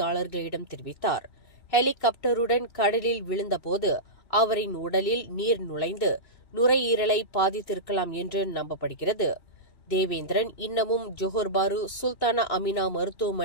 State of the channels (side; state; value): right; late; 2.7 ms